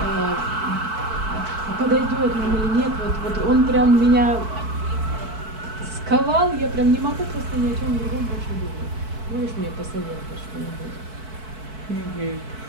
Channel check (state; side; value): late; left; 4.6 ms